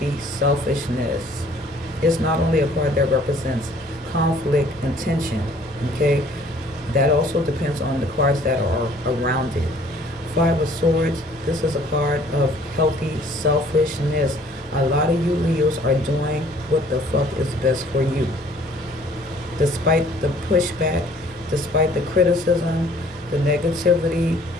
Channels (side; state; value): both; normal; correlation 0.56